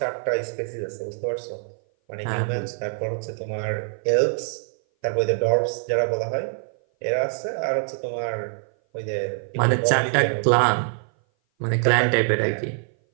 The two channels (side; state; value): left; silent; 57 dB below the other